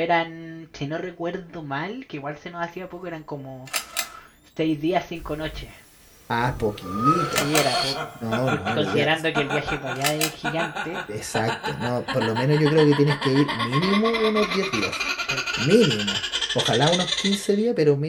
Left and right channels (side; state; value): both; identical; correlation 1.00